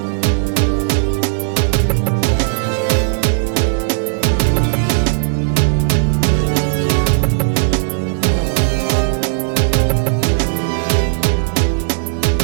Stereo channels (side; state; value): left; silent; 69 dB below the other